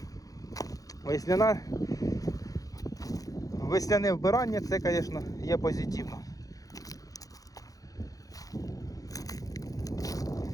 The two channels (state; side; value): late; right; 0.17 ms